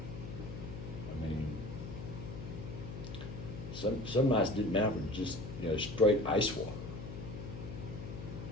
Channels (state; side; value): noise; left; hum, 8 dB below the sound